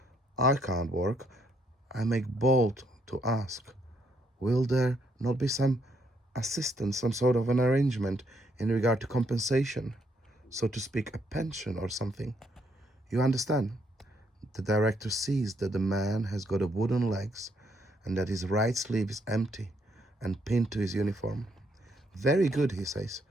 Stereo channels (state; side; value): normal; both; correlation 0.72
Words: I can't work. I make bold to ask, will there not be some assistance, some sort of an arrangement in regard to compensation, so to speak, a pension or something? You understand? The director sees that the man has got a wooden legs and that his right sleeve is empty and pinned to his uniform. Very good, he says.